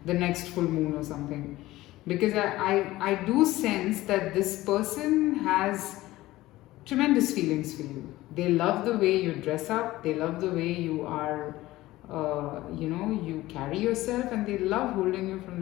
the next full moon or something. Because I do sense that this person has tremendous feelings for you. They love the way you dress up, they love the way you are, you carry yourself, and they love holding you from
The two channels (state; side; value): quieter; right; 17.2 dB